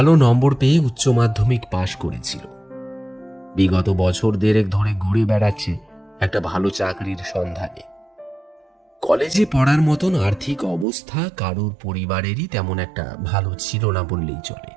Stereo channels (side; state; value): left; drops out; at 10.9 s